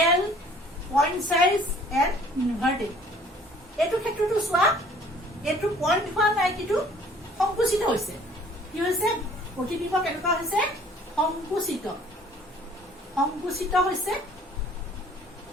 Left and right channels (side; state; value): both; normal; correlation 0.54